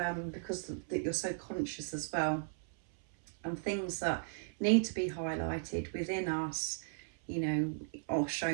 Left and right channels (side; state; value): left; silent; 54 dB below the other